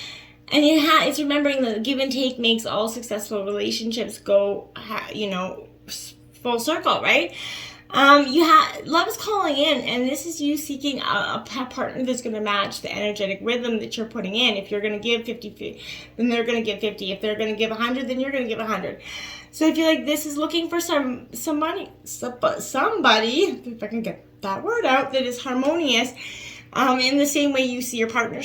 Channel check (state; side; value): identical; both; correlation 1.00